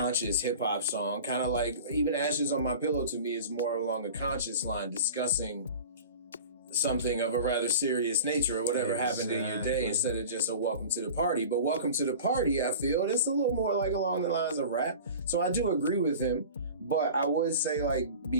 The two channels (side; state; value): both; inverted; correlation -0.37